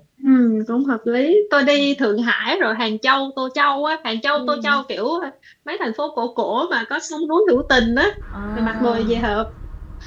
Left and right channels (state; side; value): identical; both; correlation 1.00